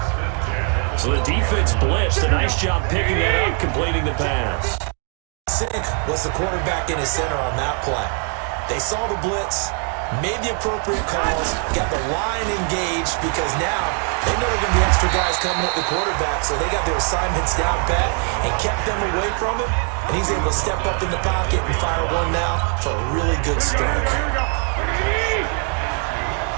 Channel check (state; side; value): quieter; left; 38.9 dB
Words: So the defense blitzed. A nice job picking that up, completing the pass. Sink was the quarterback in his center on that play. They saw the blitz, made the appropriate calls, got the line engaged because now they know there are going to be extra guys coming at the quarterback, so they got their assignments down pat and kept them away from him, and he's able to step up in the pocket and fire one now for a really good strike.